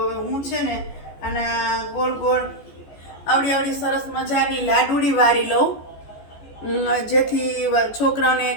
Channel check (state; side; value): late; right; 14 ms